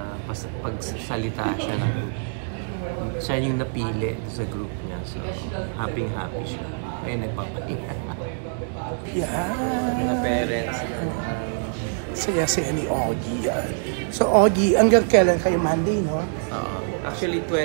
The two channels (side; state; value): left; silent; digital silence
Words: pagsalita siya ng siya yung napili sa group niya. So, happy siya. Ay, nagpapahinga. Yeah. Mga parents. Saya-saya ni Augie. So, Augie, hanggang kailan kayo? Monday, no? Actually,